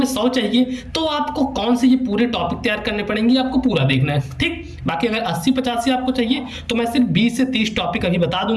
100 चाहिए तो आपको कौन से ये पूरे टॉपिक तैयार करने पड़ेंगे, आपको पूरा देखना है, ठीक। बाकी अगर 80-85 आपको चाहिए तो मैं सिर्फ 20 से 30 टॉपिक अभी बता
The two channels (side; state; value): both; identical; correlation 1.00